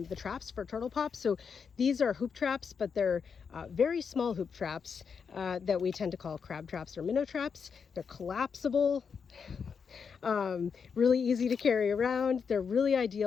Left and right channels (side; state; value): right; quieter; 6.2 dB